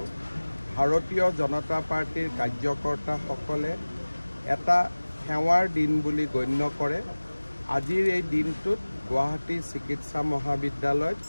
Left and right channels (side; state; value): both; inverted; correlation -1.00